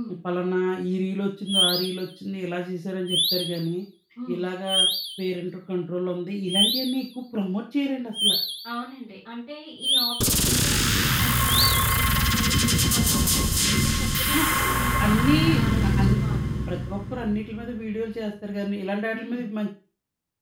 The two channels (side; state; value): both; identical; correlation 1.00